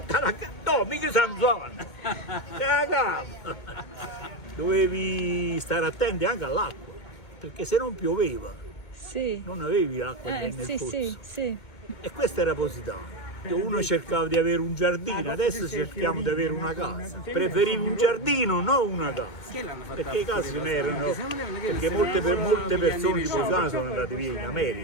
no, mica Sanzona. Dovevi stare attenti anche all'acqua, perché se non pioveva, non avevi l'acqua nel pozzo. Sì. E questo era Positano. Uno cercava di avere un giardino, adesso cerchiamo di avere una casa. Preferivo un giardino, non una casa. Perché i casi ne erano, perché molte persone di Positano sono andate via in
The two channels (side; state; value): right; late; 2.2 ms